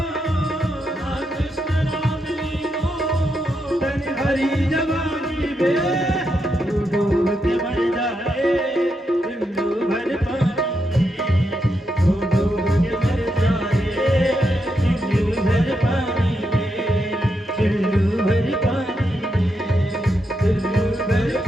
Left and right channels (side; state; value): both; normal; correlation 0.83